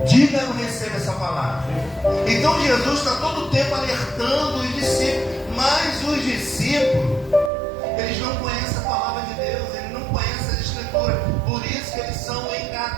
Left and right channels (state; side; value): drops out; left; at 7.5 s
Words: Diga: eu recebo essa palavra. Então Jesus está todo o tempo alertando os discípulos. Mas os discípulos, eles não conhecem a palavra de Deus, eles não conhecem a Escritura. Por isso que eles são